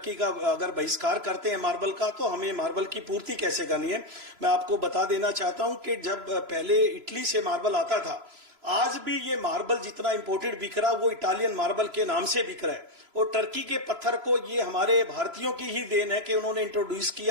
का अगर बहिष्कार करते हैं मार्बल का, तो हमें मार्बल की पूर्ति कैसे करनी है। मैं आपको बता देना चाहता हूं कि जब पहले इटली से मार्बल आता था, आज भी ये मार्बल जितना इंपोर्टेड बिक रहा वो इटालियन मार्बल के नाम से बिक रहा है। और टर्की के पत्थर को ये हमारे भारतीयों की ही देन है कि उन्होंने इंट्रोड्यूस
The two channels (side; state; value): left; late; 3.0 ms